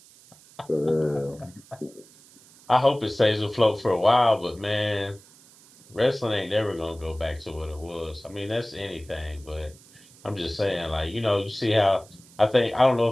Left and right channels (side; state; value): right; noise; hiss, 25 dB below the sound